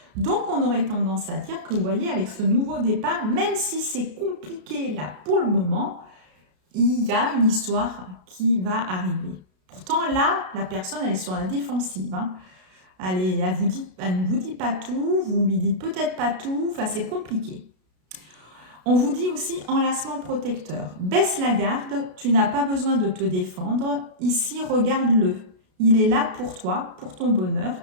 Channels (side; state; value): left; late; 33 ms